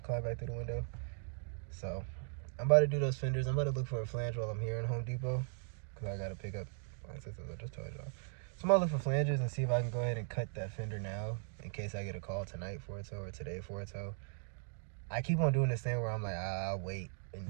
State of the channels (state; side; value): silent; left; 52 dB below the other